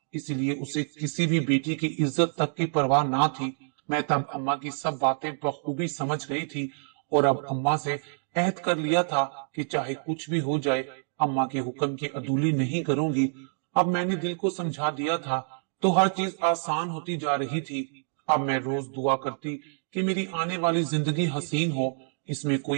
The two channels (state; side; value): silent; left; digital silence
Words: इसलिए उसे किसी भी बेटी की इज्जत तक की परवाह ना थी। मैं तब अम्मा की सब बातें बखूबी समझ गई थी और अब अम्मा से अहद कर लिया था कि चाहे कुछ भी हो जाए, अम्मा के हुक्म की अदूली नहीं करूंगी। अब मैंने दिल को समझा दिया था तो हर चीज आसान होती जा रही थी। अब मैं रोज दुआ करती कि मेरी आने वाली जिंदगी हसीन हो, इसमें